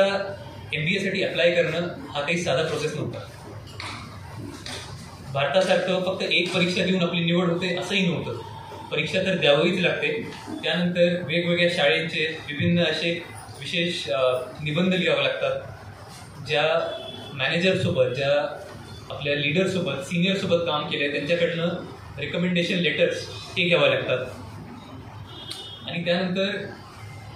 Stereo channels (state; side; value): identical; both; correlation 1.00